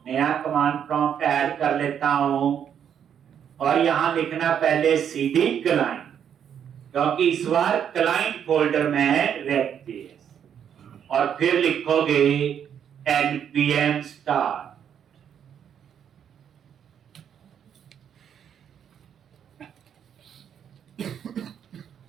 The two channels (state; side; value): quieter; left; 8.6 dB